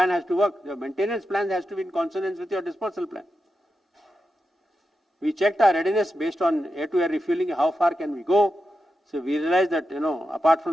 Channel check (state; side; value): normal; both; correlation 0.89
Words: has to work. Your maintenance plan has to be in consonance with your dispersal plan. We checked our readiness based on air-to-air refueling, how far can we go. So we realized that, apart